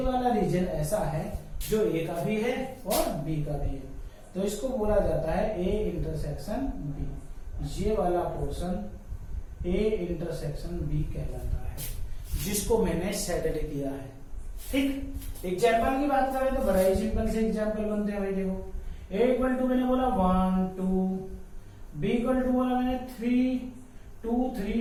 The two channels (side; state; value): both; identical; correlation 1.00